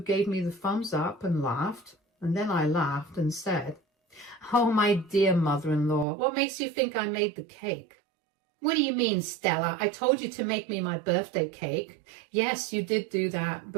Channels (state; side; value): drops out; left; at 6.1 s